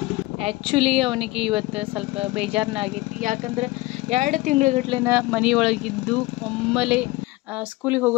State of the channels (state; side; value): quieter; right; 20.5 dB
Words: ಆ್ಯಕ್ಚುಲಿ ಅವನಿಗೆ ಇವತ್ತು ಸ್ವಲ್ಪ ಬೇಜಾರನ್ನ ಆಗೈತಿ. ಯಾಕಂದರೆ 2 ತಿಂಗಳಗಟ್ಲೆನ ಮನೆಯೊಳಗಿದ್ದು ಒಮ್ಮೆಲೆ ಸ್ಕೂಲಿಗೆ